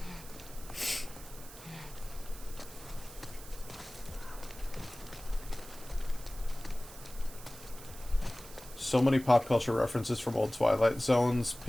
So many pop culture references from old Twilight Zones,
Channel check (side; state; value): right; noise; hiss, 16 dB below the sound